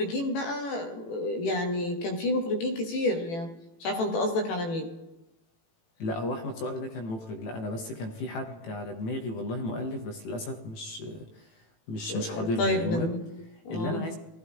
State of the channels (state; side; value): late; right; 18 ms